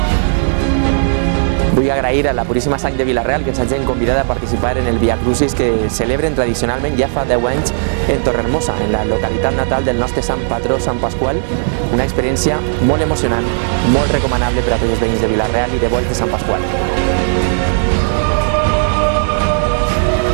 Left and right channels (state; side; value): silent; left; digital silence